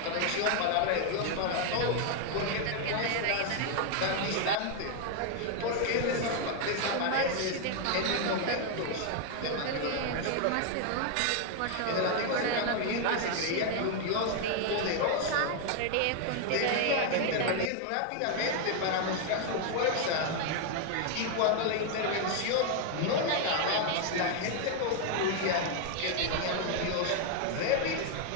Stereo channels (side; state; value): both; different; correlation 0.00